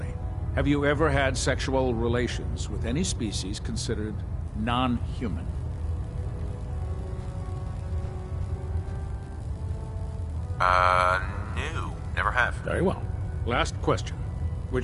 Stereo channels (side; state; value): both; identical; correlation 1.00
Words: Have you ever had sexual relations with any species considered non-human? No. Never have. Very well. Last question.